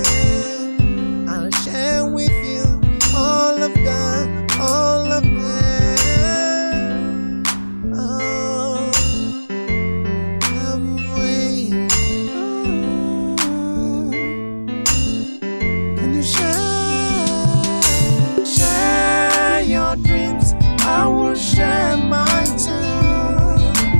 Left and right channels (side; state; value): both; inverted; correlation -1.00